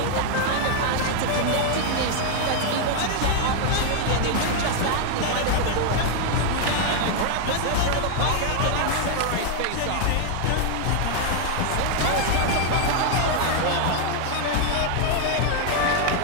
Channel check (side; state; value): both; different; correlation 0.00